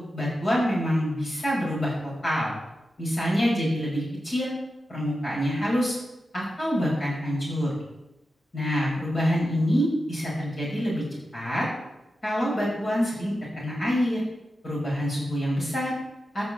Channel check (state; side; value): normal; both; correlation 0.90